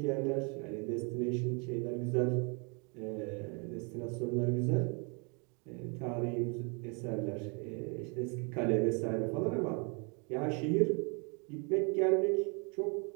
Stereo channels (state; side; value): quieter; left; 34.8 dB